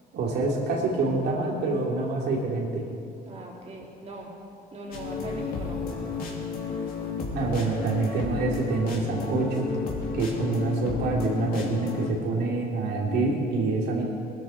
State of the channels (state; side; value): normal; both; correlation 0.48